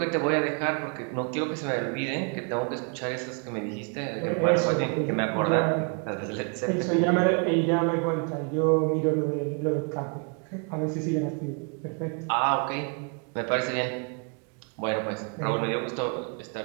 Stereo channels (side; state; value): left; quieter; 37.7 dB